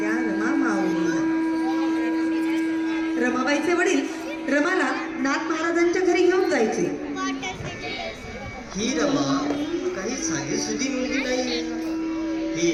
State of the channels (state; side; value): identical; both; correlation 1.00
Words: रमा माऊलीला. रमाबाईचे वडील रमाला नाथ महाराजांच्या घरी घेऊन जायचे. ही रमा काही साधी सुधी मुलगी नाही, ही